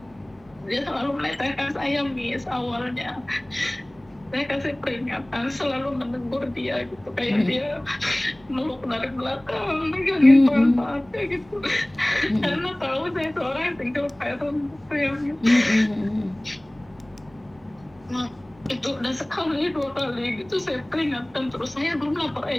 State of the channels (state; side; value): noise; right; hum, 28 dB below the sound